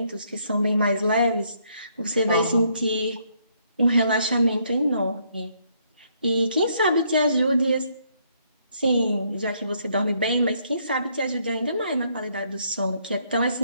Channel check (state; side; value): inverted; both; correlation -0.71